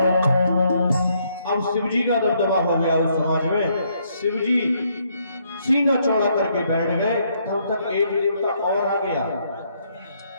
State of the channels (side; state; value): both; inverted; correlation -0.72